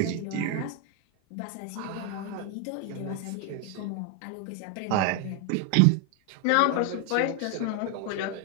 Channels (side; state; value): both; different; correlation 0.01